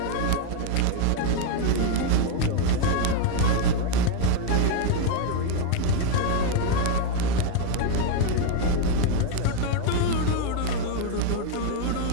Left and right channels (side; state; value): both; different; correlation 0.01